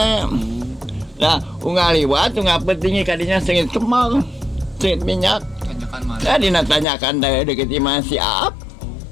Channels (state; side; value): drops out; right; at 6.9 s